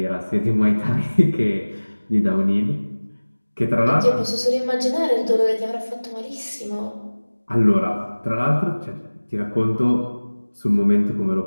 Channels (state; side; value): inverted; both; correlation -1.00